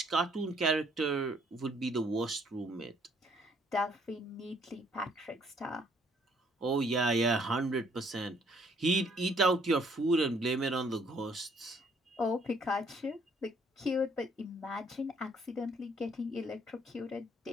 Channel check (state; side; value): normal; both; correlation 0.64